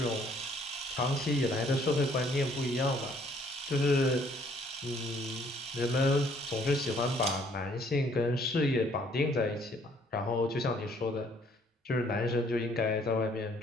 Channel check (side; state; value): both; normal; correlation 0.62